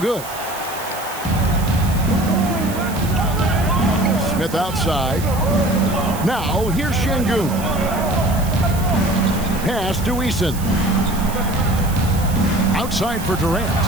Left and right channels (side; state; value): right; noise; hiss, 13 dB below the sound